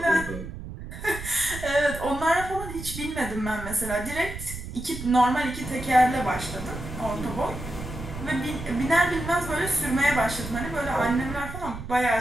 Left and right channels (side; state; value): right; noise; rumble, 10 dB below the sound